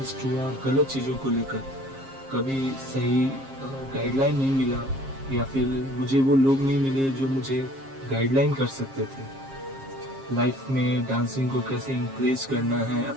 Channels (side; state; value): left; late; 7.4 ms